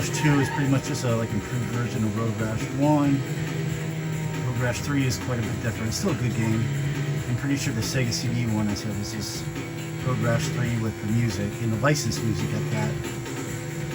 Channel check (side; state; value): both; identical; correlation 1.00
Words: 2 is pretty much just a like improved version of Road Rash 1. Road Rash 3 is quite a bit different. It's still a good game. I'm pretty sure the Sega CD one I said was just Road Rash 3 with the music, and the licensed music at that.